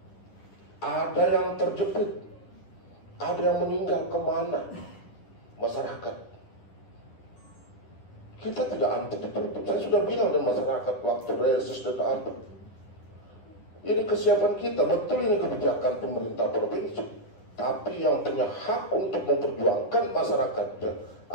ada yang terjepit, ada yang meninggal, kemana masyarakat? Kita tidak anti ditutup. Saya sudah bilang dengan masyarakat waktu reses dan apa. Ini kesiapan kita, betul ini kebijakan pemerintah provinsi. Tapi yang punya hak untuk memperjuangkan masyarakatnya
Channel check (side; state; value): right; late; 10 ms